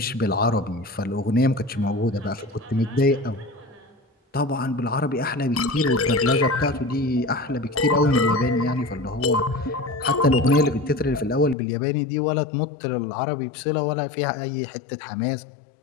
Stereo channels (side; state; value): right; drops out; at 11.6 s